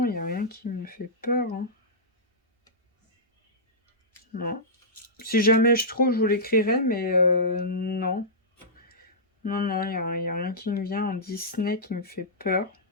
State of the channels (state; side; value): normal; both; correlation -0.15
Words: il n'y a rien qui me fait peur, hein. Non. Si jamais je trouve, je vous l'écrirai, mais non. Non, non, il n'y a rien qui me vient en Disney qui me fait peur.